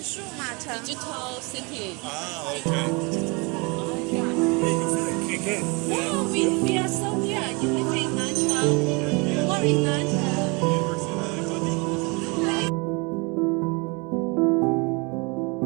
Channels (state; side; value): quieter; left; 29.1 dB